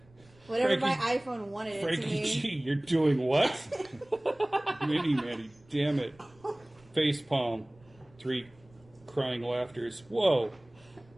Whatever my Frankie- iPhone wanted it to Frankie mean. G, you're doing what? Mini Manny, damn it. Face palm. 3 crying laughters. Whoa.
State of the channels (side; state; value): right; noise; rumble, 28 dB below the sound